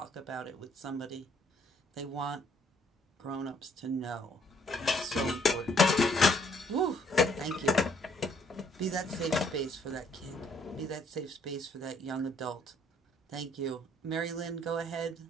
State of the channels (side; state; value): both; normal; correlation 0.65